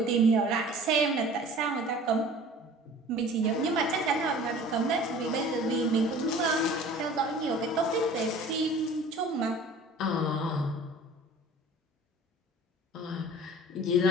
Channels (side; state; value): both; normal; correlation 0.45